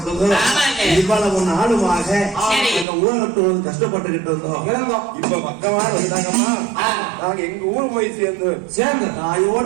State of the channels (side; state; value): left; drops out; at 2.9 s